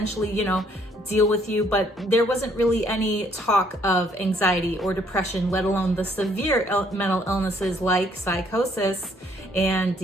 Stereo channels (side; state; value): both; normal; correlation 0.65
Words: deal with you, but there wasn't really any talk of anxiety or depression, let alone the severe mental illnesses like psychosis and